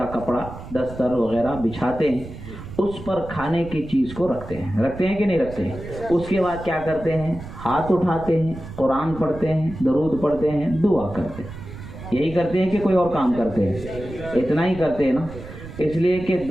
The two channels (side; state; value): right; noise; rumble, 13 dB below the sound